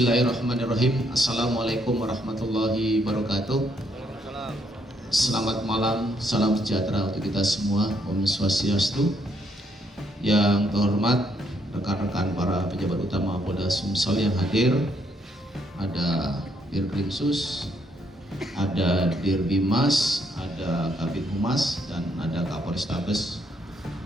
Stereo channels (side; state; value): both; normal; correlation 0.73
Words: Assalamualaikum warahmatullahi wabarakatuh. Selamat malam, salam sejahtera untuk kita semua. Om Swastiastu. Yang terhormat rekan-rekan para pejabat utama Polda Sumsel yang hadir, ada Dirkrimsus, ada Dirbimas, ada Kabid Humas, dan ada Kapolrestabes,